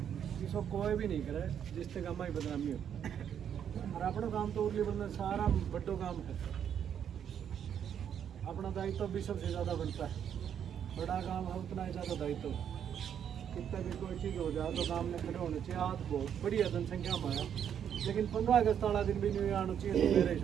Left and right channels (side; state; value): left; quieter; 8.8 dB